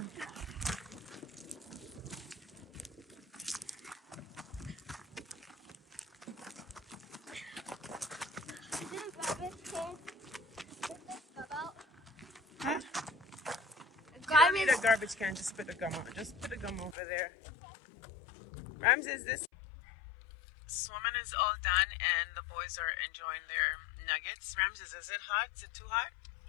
Huh? You don't need a garbage can. Just put the gum on. Just put the gum over there. Ramses, this swimming is all done and the boys are enjoying their nuggets. Ramses, is it hot? Is it too hot?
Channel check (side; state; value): right; drops out; at 16.9 s